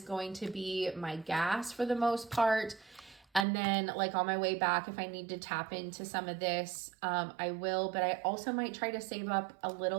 going to be my gas for the most part. And then like on my way back, if I need to tap into some of this, I will. But I also might try to save up a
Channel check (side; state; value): left; drops out; at 3.5 s